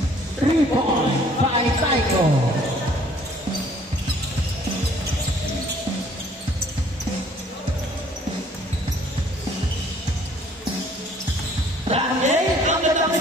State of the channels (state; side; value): normal; both; correlation 0.58